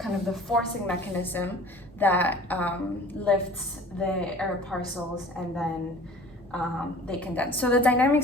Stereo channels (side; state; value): both; normal; correlation 0.46